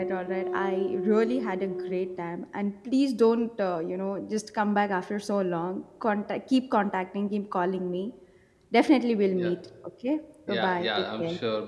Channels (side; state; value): both; identical; correlation 1.00